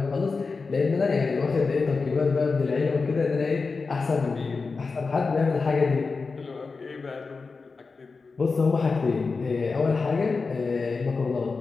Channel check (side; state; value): right; quieter; 4.4 dB